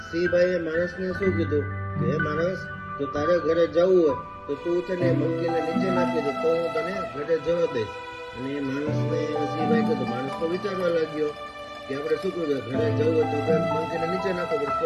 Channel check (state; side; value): identical; both; correlation 1.00